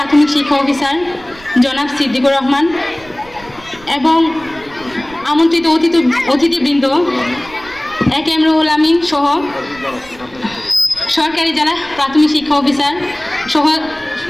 শিক্ষা অফিসার জনাব সিদ্দিকুর রহমান এবং আমন্ত্রিত অতিথিবৃন্দ এ কে এম রুহুল আমিন সহ সরকারি জেলা প্রাথমিক শিক্ষা অফিসার সহ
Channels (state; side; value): noise; right; rumble, 22 dB below the sound